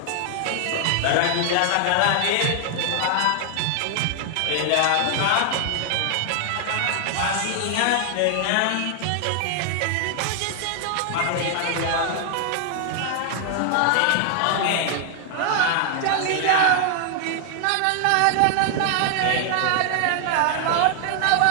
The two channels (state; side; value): different; both; correlation 0.00